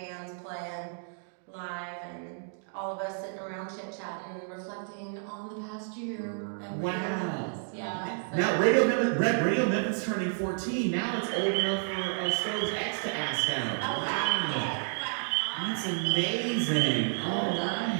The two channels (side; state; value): left; silent; digital silence